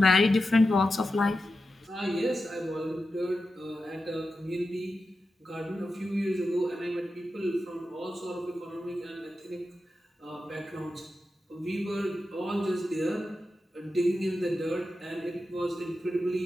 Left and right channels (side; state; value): both; normal; correlation 0.91